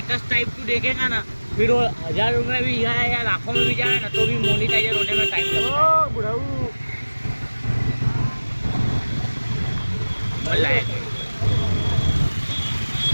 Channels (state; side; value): inverted; both; correlation -1.00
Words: टाइप तू देखेगा ना, फिर वो 1000 रुपये भी जाए या लाखों में भी जाए ना, तो भी मोनेटाइजर होने में टाइम लगता है। बुढ़ाऊ बोला है